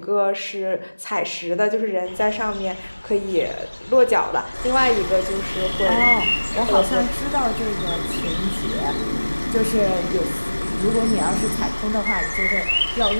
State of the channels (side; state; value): both; inverted; correlation -1.00